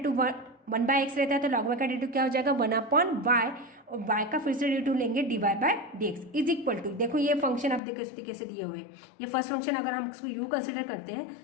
वन बाय एक्स रहता है तो log y का डेरिवेटिव क्या हो जाएगा वन अपॉन वाई, और y का फिर से डेरिवेटिव लेंगे D Y by D x is equal to, देखो ये फंक्शन अब देखो इस कैसे दिए हुए हैं, ये फर्स्ट फंक्शन अगर हम उसको u कंसिडर करते हैं,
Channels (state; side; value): drops out; right; at 7.8 s